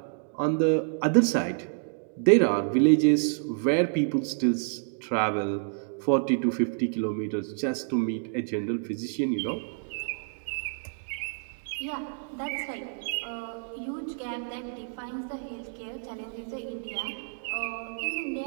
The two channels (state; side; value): silent; left; digital silence